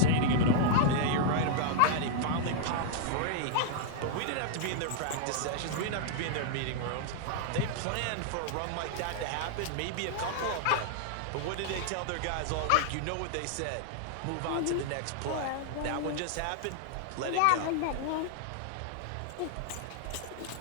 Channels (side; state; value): both; different; correlation -0.01